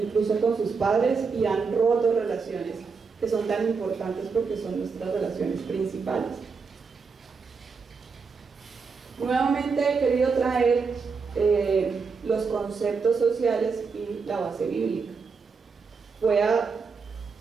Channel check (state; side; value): quieter; left; 5.1 dB